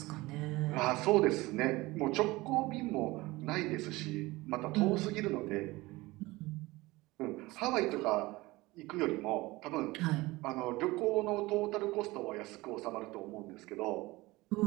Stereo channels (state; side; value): quieter; left; 20.7 dB